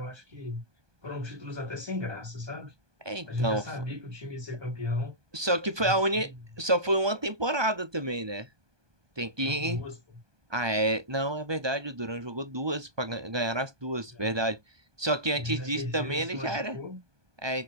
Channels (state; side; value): late; left; 1.2 ms